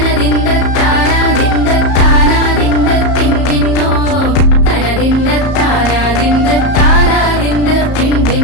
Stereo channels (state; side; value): late; right; 34 ms